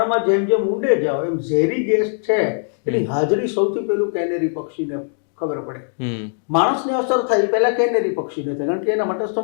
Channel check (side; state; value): right; silent; 66 dB below the other